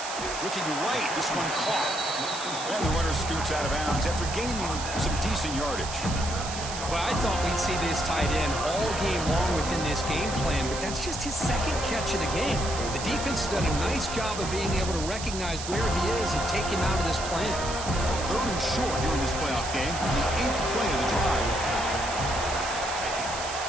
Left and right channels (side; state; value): right; noise; hiss, 8 dB below the sound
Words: Looking right. This one caught. And the runner scoots out of bounds after gaining some decent yardage. Well, I thought we'd see this tight end all game long within this game plan, but that's just his second catch of the game. The defense has done a nice job of being able to recognize where he is and take him out of this plan. Third and short here in this playoff game, the 8th play of the drive.